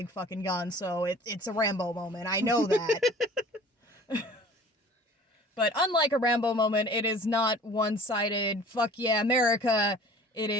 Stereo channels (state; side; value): normal; both; correlation 0.46